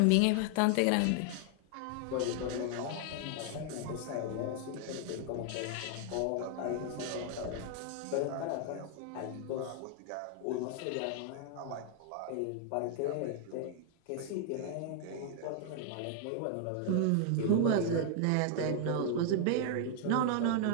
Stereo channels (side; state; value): both; different; correlation 0.00